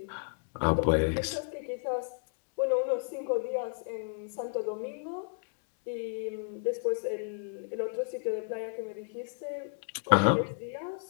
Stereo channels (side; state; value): right; silent; digital silence